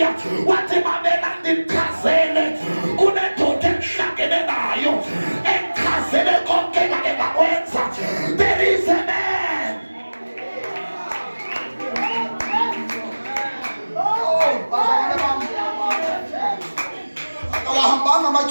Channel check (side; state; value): both; inverted; correlation -1.00